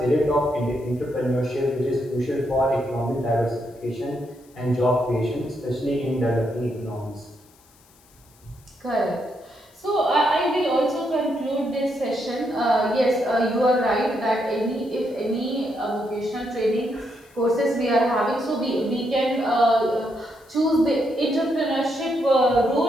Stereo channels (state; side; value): noise; left; hiss, 30 dB below the sound